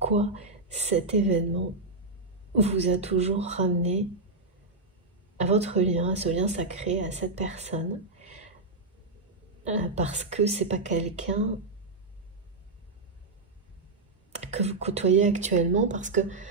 cet événement vous a toujours ramené à votre lien, à ce lien sacré, à cette personne. Parce que c'est pas quelqu'un que vous côtoyez actuellement, parce que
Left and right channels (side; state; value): left; quieter; 3.3 dB